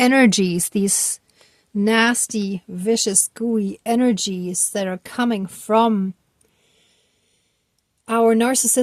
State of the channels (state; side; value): identical; both; correlation 1.00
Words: these nasty, vicious, gooey energies that are coming from our